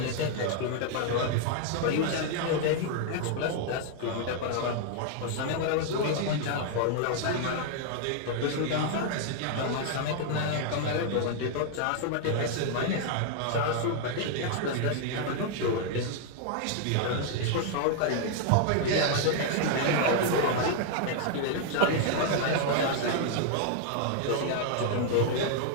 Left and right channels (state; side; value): different; both; correlation 0.00